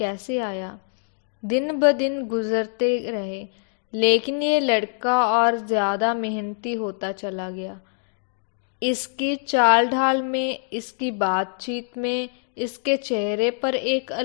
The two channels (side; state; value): right; silent; digital silence